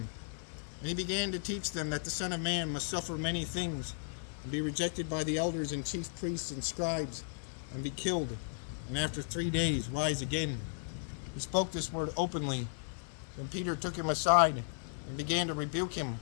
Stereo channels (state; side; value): silent; right; digital silence